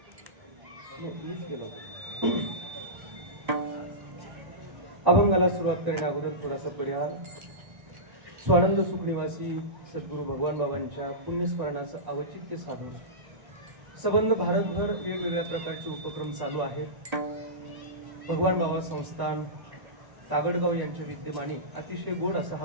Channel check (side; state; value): left; late; 1.1 ms